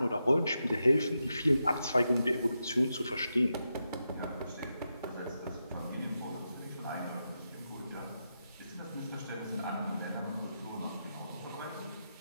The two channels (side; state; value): both; inverted; correlation -0.87